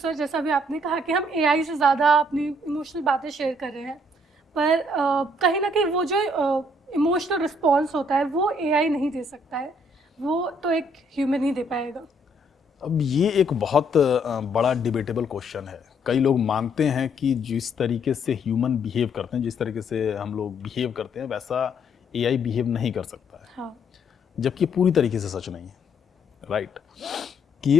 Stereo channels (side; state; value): both; normal; correlation 0.68